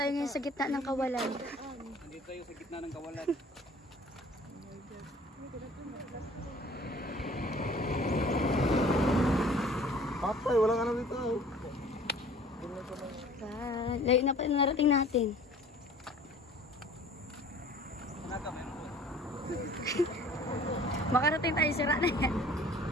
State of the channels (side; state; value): both; normal; correlation 0.49